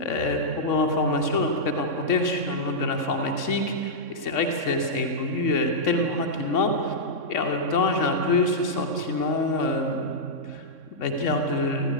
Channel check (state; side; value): late; right; 3.6 ms